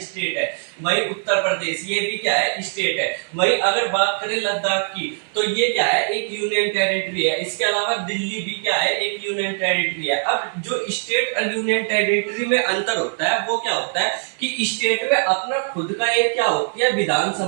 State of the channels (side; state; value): left; silent; digital silence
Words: स्टेट है। वही उत्तर प्रदेश, ये भी क्या है, स्टेट है। वही अगर बात करें लद्दाख की तो ये क्या है, एक यूनियन टेरिटरी है। इसके अलावा दिल्ली भी क्या है, एक यूनियन टेरिटरी है। अब जो स्टेट और यूनियन टेरिटरी में अंतर होता है वो क्या होता है कि स्टेट में अपना खुद का एक क्या होती है, विधानसभा